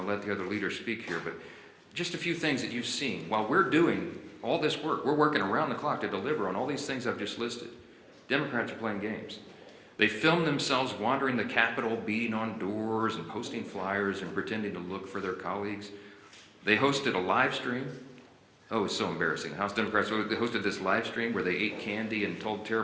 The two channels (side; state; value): both; identical; correlation 1.00